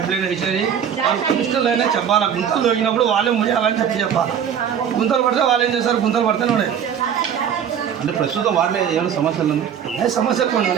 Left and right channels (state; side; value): quieter; left; 8.4 dB